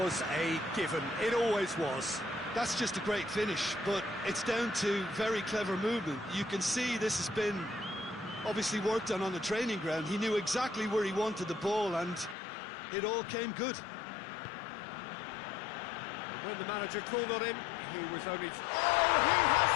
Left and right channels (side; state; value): right; drops out; at 12.4 s